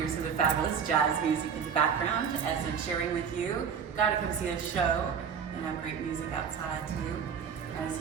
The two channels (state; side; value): quieter; left; 6.9 dB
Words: some of the fabulous jazz music in the background as I'm sharing with you. Gotta come see the show and have great music outside too. As